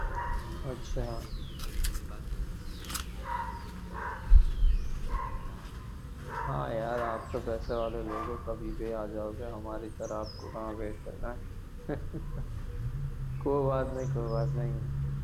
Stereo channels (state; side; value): identical; both; correlation 1.00